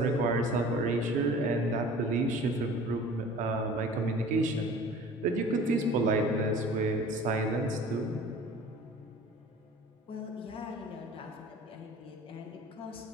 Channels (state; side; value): normal; both; correlation 0.45